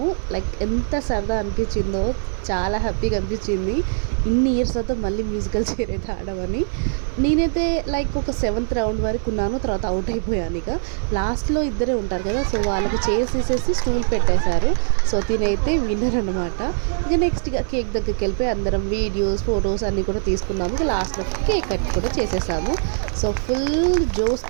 లైక్ ఎంత సరదా అనిపించిందో, చాలా హ్యాపీగా అనిపించింది. ఇన్ని ఇయర్స్ తర్వాత మళ్ళీ మ్యూజికల్ చైర్ అయితే ఆడమని. నేనైతే లైక్ ఒక 7th రౌండ్ వరకు ఉన్నాను, తర్వాత అవుట్ అయిపోయాను. ఇక లాస్ట్లో ఇద్దరే ఉంటారు కదా, సో వాళ్ళకి చైర్స్ తీసేసి స్టూల్ పెట్టేశారు. సో తినైతే విన్నర్ అనమాట. ఇక నెక్స్ట్ ఇక కేక్ దగ్గరికి వెళ్ళిపోయి అందరం వీడియోస్ ఫొటోస్ అన్నీ కూడా తీసుకున్నాము. ఇక లాస్ట్లో కేక్ కట్ కూడా చేసేసాము. సో ఫుల్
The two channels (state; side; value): silent; left; digital silence